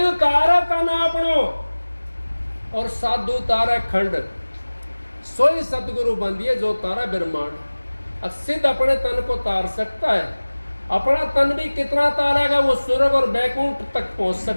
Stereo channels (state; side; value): inverted; both; correlation -1.00